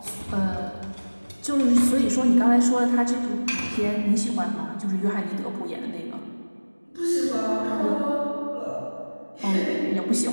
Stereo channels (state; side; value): inverted; both; correlation -1.00